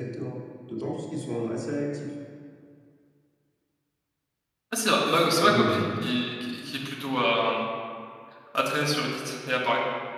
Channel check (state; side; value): identical; both; correlation 1.00